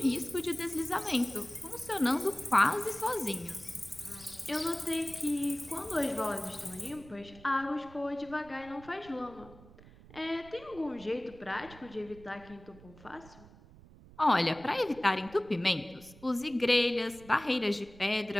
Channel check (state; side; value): noise; right; rumble, 21 dB below the sound